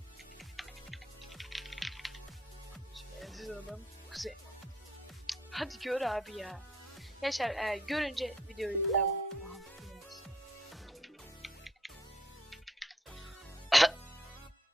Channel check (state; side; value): normal; both; correlation 0.67